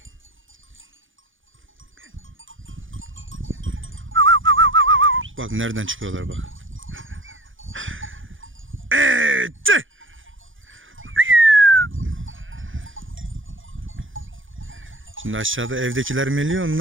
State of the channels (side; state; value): left; late; 0.57 ms